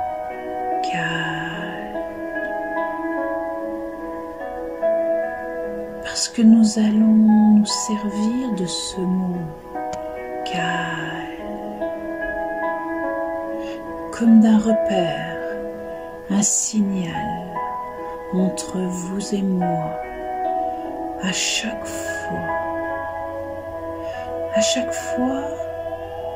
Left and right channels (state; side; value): identical; both; correlation 1.00